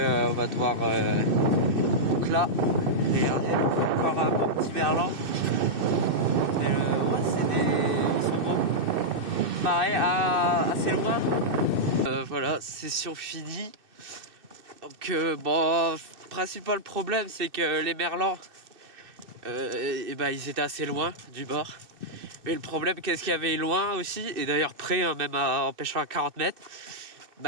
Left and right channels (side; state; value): left; late; 2.6 ms